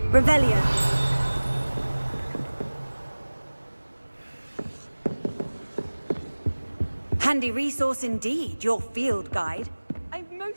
Revelio. Handy resource indeed, your field guide. I'm most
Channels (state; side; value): inverted; both; correlation -1.00